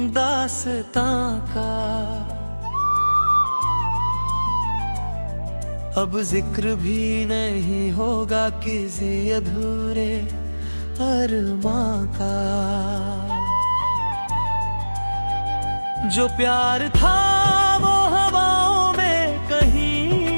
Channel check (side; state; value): both; inverted; correlation -1.00